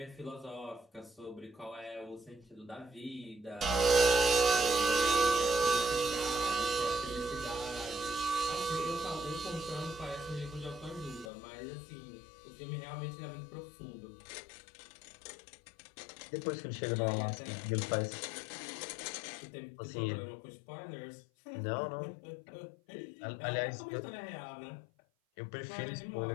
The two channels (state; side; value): drops out; right; at 11.3 s